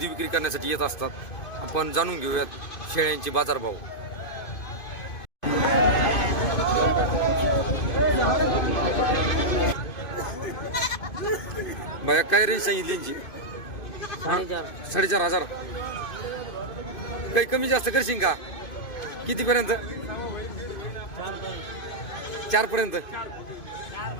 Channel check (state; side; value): late; right; 2.5 ms